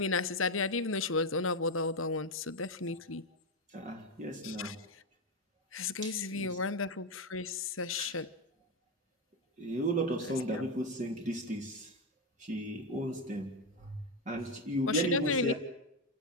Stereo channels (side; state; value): both; normal; correlation 0.09